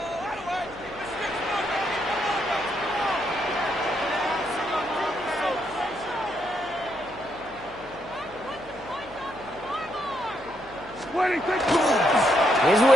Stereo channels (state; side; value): noise; left; hum, 22 dB below the sound